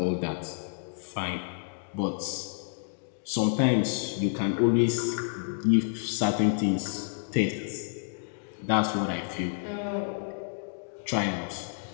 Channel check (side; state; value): right; silent; digital silence